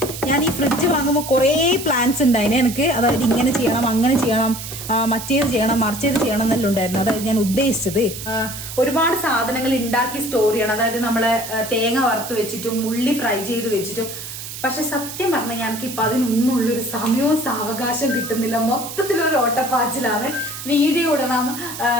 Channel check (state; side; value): noise; right; hiss, 10 dB below the sound